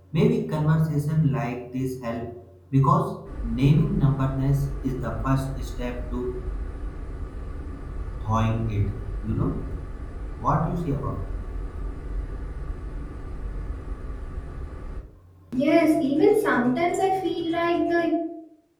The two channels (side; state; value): both; identical; correlation 1.00